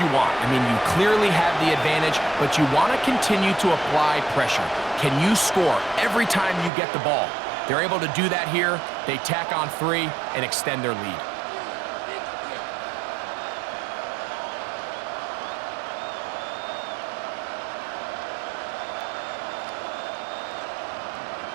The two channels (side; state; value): left; drops out; at 6.7 s